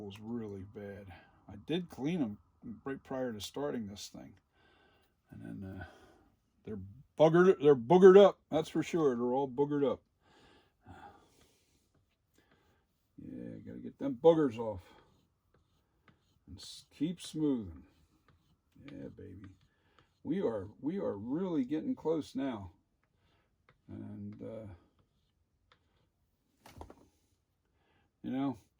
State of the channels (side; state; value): both; identical; correlation 1.00